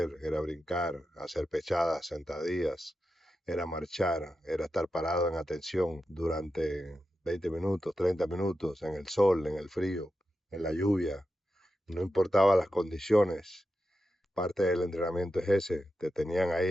era brincar, hacer pechadas, sentadillas, era marchar, era estar parado en atención durante 20 minutos, 30 minutos, en el sol, en el frío, en la lluvia, no importaba las condiciones. Parte del entrenamiento es ese, te tenían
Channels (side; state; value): both; normal; correlation 0.90